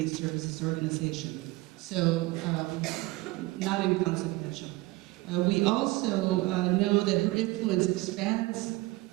Services Organization. So, not inconsequential. We also know that her influence expands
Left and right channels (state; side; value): quieter; left; 20.7 dB